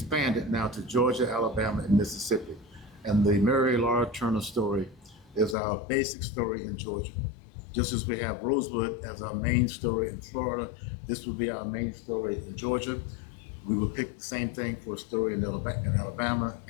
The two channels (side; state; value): right; drops out; at 5.6 s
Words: now to Georgia, Alabama, and Mississippi. And the Mary Laura Turner story is our basic story in Georgia. Just as we have Rosewood as our main story in Florida, this will be our main story in Georgia. We will pick the same thing for a story in Alabama